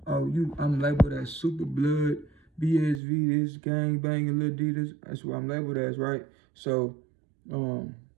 Oh, I'm labeled as super blood, BSV, this gang banging Lil D, this. That's what I'm labeled as, right? So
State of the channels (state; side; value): drops out; left; at 3.0 s